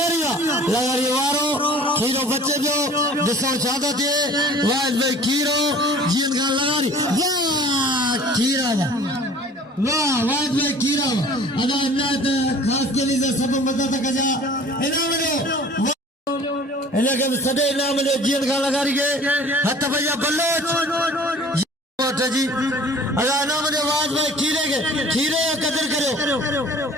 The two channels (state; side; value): normal; both; correlation 0.48